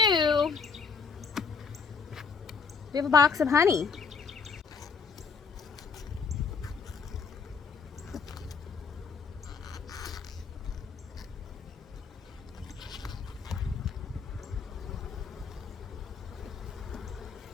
we have a box of honey.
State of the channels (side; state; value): right; quieter; 5.4 dB